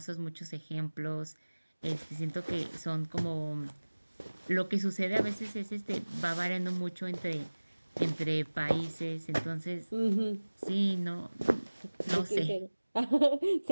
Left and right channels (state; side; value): inverted; both; correlation -1.00